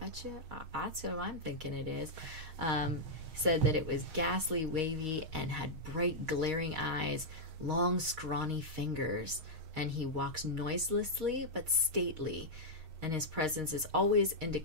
you that's what I'm thinking it is. Said that it was ghastly, wavy, and had bright, glaring eyes, long, scrawny fingers, and he walks noiselessly but stately, and his presence is always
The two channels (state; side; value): late; left; 6.4 ms